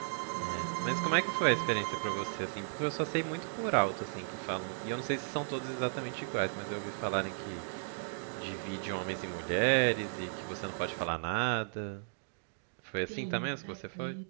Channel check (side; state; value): left; silent; digital silence